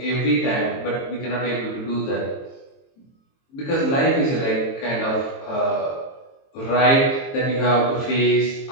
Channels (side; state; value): right; late; 22 ms